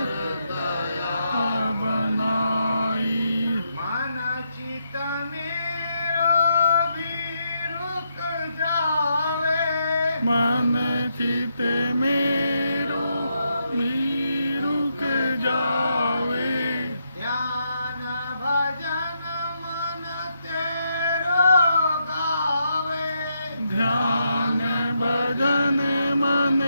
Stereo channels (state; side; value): inverted; both; correlation -0.80